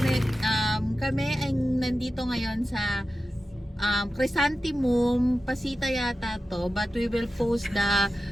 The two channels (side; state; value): both; normal; correlation 0.93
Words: kami ay nandito ngayon sa Chrysanthemum, Pasita yata to, but we will post